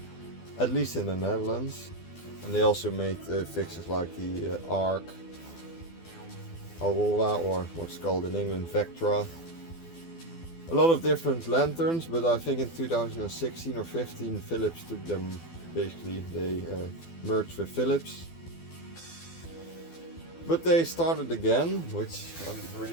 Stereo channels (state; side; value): late; right; 12 ms